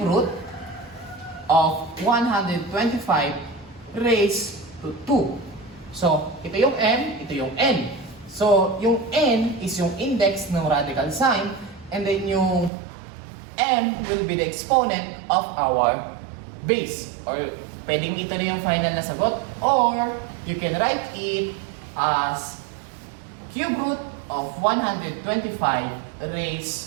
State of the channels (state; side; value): drops out; left; at 12.7 s